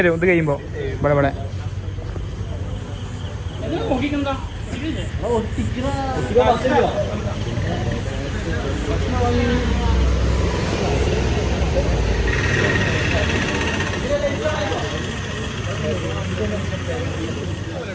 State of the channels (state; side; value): identical; both; correlation 1.00